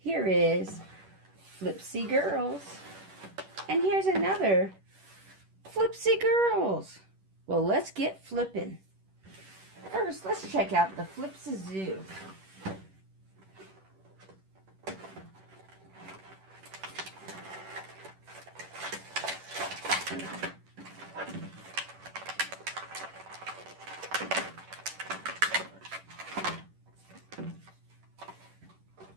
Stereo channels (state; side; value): late; left; 10 ms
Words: is Flipsy Girls. And here's another Flipsy Girls. Well, let's get flipping. First, let's check out the Flipz.